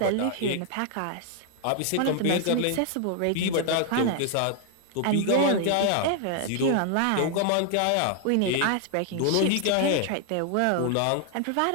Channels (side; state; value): both; different; correlation 0.00